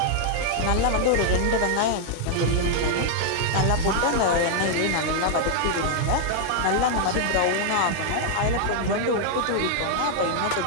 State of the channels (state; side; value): different; both; correlation 0.00